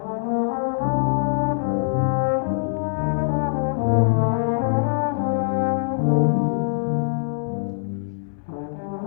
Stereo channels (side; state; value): right; silent; 63 dB below the other